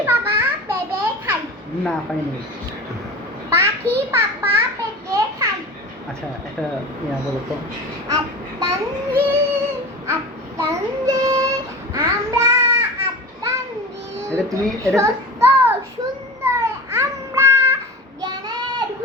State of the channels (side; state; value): both; normal; correlation 0.32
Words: বাবা পেঁপে খায়। না পাইনি। পাখি বাবা পেঁপে খায়। আচ্ছা একটা বলো তো। আত্মাঞ্জিল আত্মাঞ্জিল আমরা আত্মাঞ্জিল এটা তুমি এটা সত্য সুন্দর আমরা জ্ঞানের